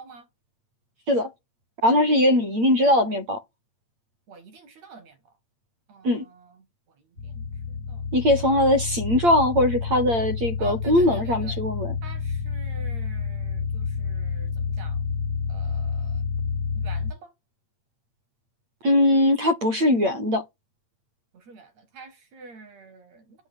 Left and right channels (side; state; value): left; late; 8.7 ms